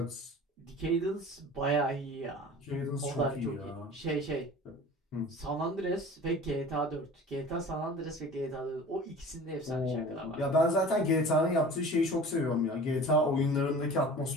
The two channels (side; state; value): both; normal; correlation 0.41